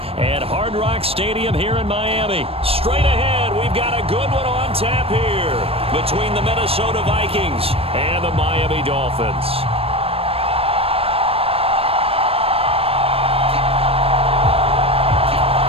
at Hard Rock Stadium here in Miami. Straight ahead, we've got a good one on tap here between the Minnesota Vikings and the Miami Dolphins.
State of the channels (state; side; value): late; left; 0.28 ms